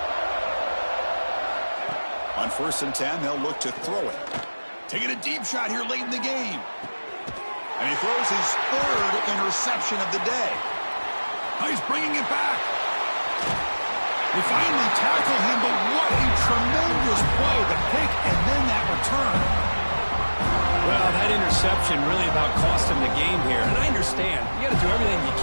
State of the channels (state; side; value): inverted; both; correlation -1.00